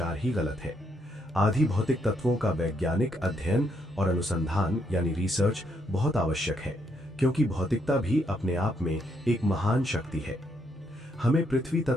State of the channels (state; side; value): normal; both; correlation 0.75